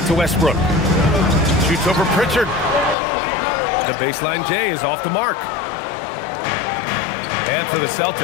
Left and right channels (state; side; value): drops out; right; at 3.0 s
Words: to Westbrook. Shoots over Pritchard. The baseline J is off the mark. And for the